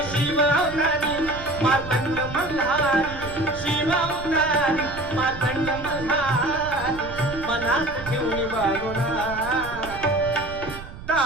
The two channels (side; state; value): right; noise; rumble, 13 dB below the sound